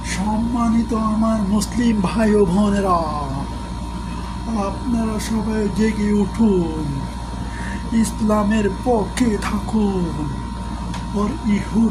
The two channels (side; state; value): both; identical; correlation 1.00